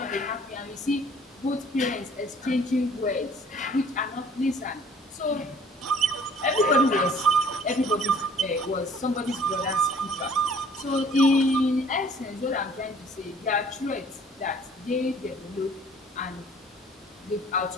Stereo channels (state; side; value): normal; both; correlation 0.54